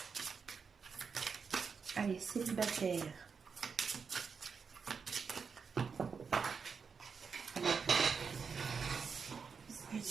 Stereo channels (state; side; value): quieter; left; 5.7 dB